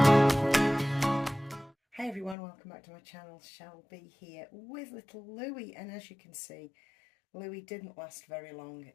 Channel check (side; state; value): right; drops out; at 2.4 s